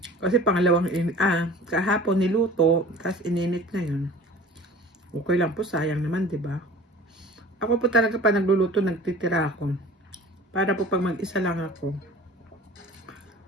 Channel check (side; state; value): both; normal; correlation 0.43